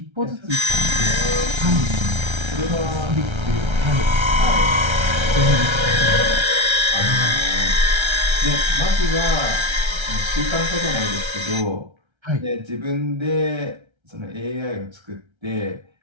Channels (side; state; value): left; late; 1.3 ms